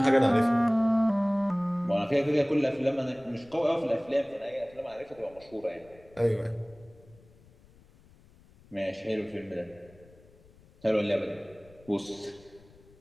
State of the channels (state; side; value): noise; left; rumble, 26 dB below the sound